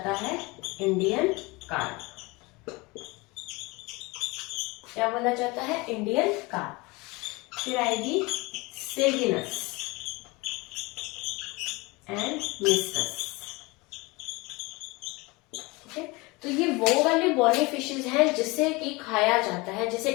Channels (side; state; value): right; quieter; 24.5 dB